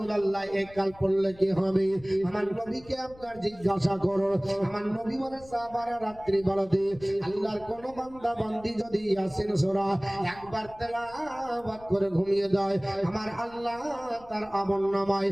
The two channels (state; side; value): noise; left; rumble, 22 dB below the sound